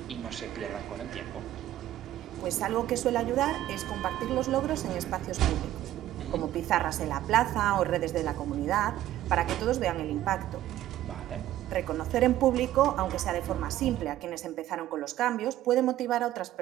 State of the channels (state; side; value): quieter; left; 13.6 dB